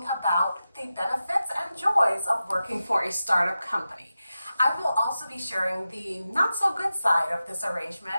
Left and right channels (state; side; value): inverted; both; correlation -0.92